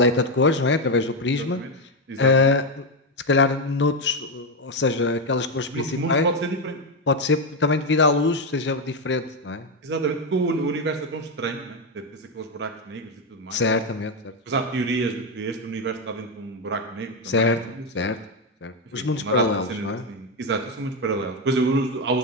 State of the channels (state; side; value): normal; both; correlation 0.07